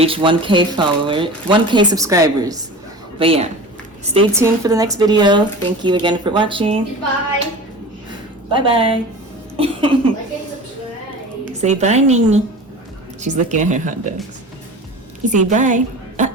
1K subscribers. But yeah, stay tuned for the next video. Thank you again for watching. Bye. Bye-bye. Like and subscribe. Say bye, Nini. She's looking at her hot dogs. You say bye.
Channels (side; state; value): both; normal; correlation 0.35